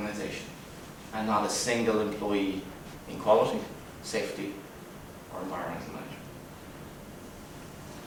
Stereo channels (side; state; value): both; identical; correlation 1.00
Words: and not a single employee in quality, safety, or environmental management.